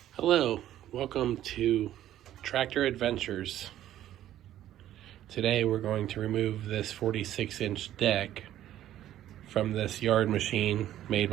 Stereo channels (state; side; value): quieter; left; 12.5 dB